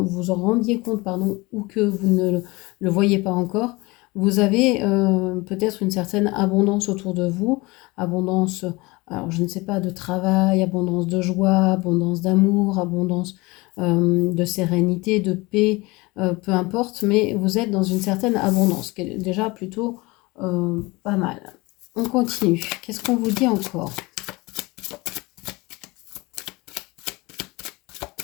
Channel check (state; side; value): quieter; right; 23.3 dB